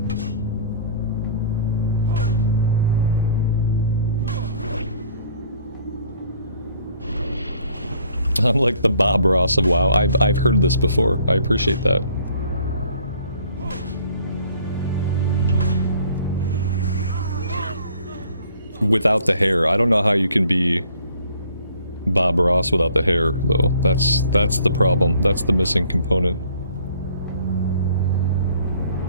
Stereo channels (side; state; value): both; inverted; correlation -0.57